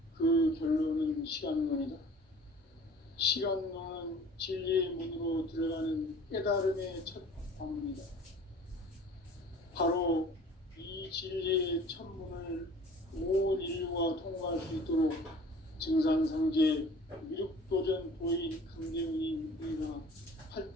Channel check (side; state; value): both; normal; correlation 0.47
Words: 그 결론은 시간론이다. 시간론은 진리의 문으로 들어가는 깨달음의 첫 관문이다. 바로 이 진리의 첫 문을 온 인류가 통과할 수 있도록 증산상제 미륵도전 도인 강대훈이 우리가